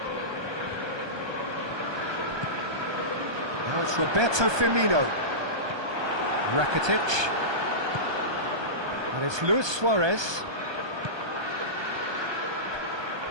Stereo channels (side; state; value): left; late; 1.2 ms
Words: Now it's Roberto Firmino. Rakitic. And it's Luis Suarez.